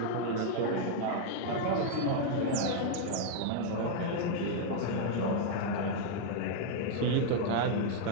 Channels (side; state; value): both; different; correlation 0.00